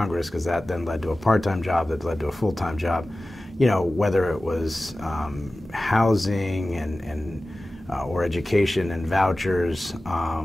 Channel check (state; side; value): normal; both; correlation 0.96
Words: because that then led to a part-time job that led to a full-time job. Whether it was housing and or education and vouchers,